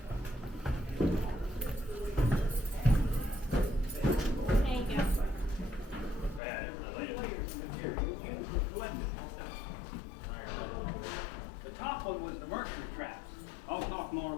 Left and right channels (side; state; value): right; drops out; at 6.4 s